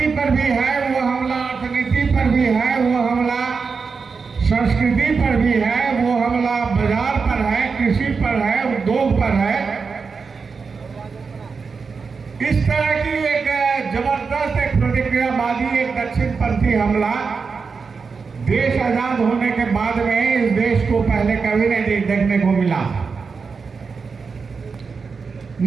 पर भी है, वो हमला अर्थनीति पर भी है, वो हमला संस्कृति पर भी है, वो हमला बाजार पर है, कृषि पर है, उद्योग पर है। इस तरह की एक जबरदस्त एक प्रतिक्रियावादी, एक दक्षिणपंथी हमला देश आजाद होने के बाद में इस देश को पहले कभी नहीं देखने को मिला।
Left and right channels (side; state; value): left; quieter; 5.1 dB